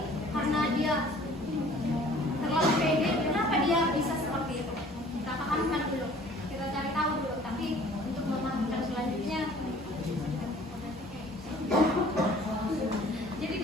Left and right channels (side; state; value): both; normal; correlation 0.52